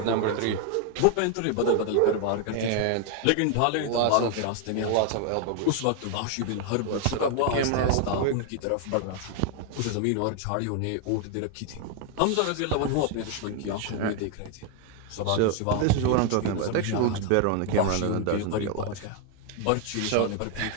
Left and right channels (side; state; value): both; different; correlation 0.00